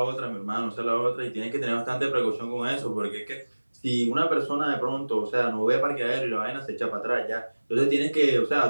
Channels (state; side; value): inverted; both; correlation -1.00